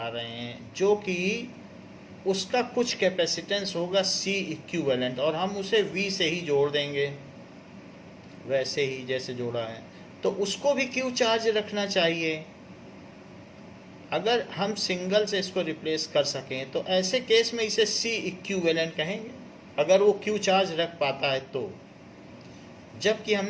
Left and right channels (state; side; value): identical; both; correlation 1.00